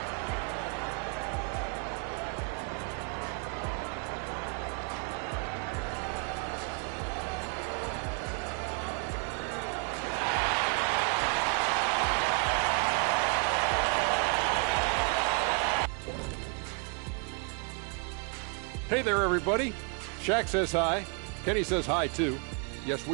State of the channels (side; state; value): left; quieter; 36.8 dB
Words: Hey there, everybody. Shaq says hi. Kenny says hi, too. Yes,